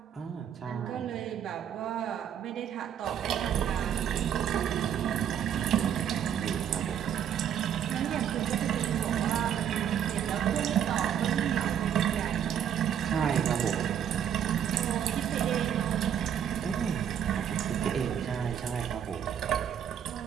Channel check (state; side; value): quieter; left; 9.0 dB